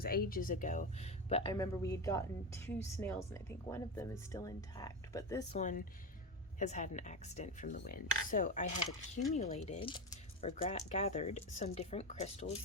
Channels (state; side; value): normal; both; correlation 0.17